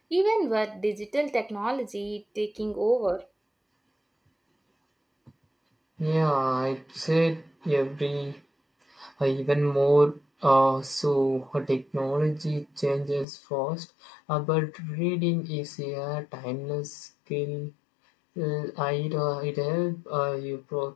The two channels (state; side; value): drops out; right; at 13.2 s